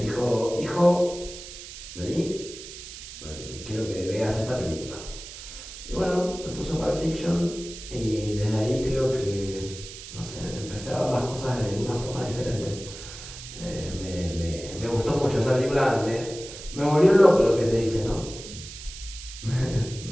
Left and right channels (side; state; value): right; noise; hiss, 13 dB below the sound